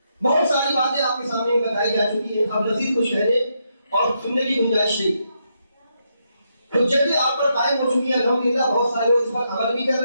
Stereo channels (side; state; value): both; inverted; correlation -0.80